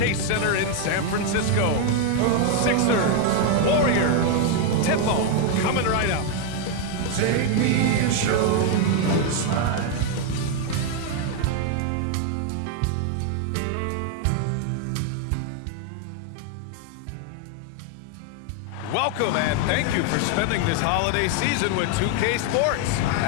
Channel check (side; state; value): both; different; correlation 0.01